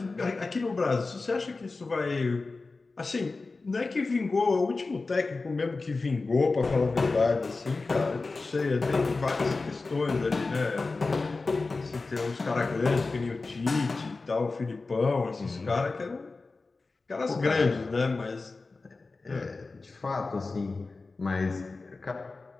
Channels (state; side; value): quieter; right; 3.7 dB